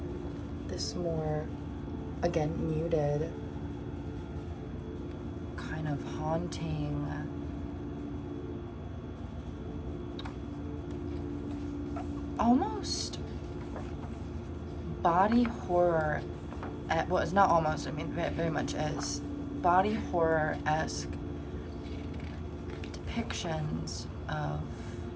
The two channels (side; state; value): both; identical; correlation 1.00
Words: this more, again, muted, kind of haunting, almost body horror, well, it's not almost, I mean, very much is body horror-esque depictions of